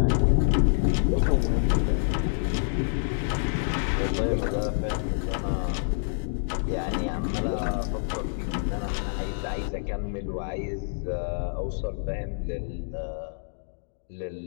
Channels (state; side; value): silent; right; digital silence